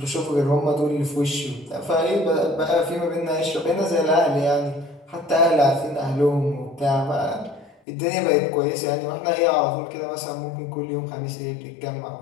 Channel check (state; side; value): drops out; right; at 7.8 s